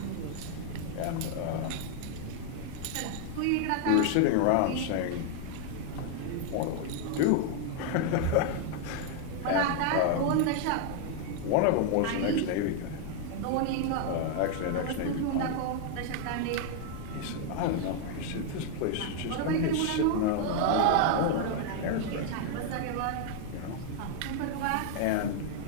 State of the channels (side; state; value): both; different; correlation 0.00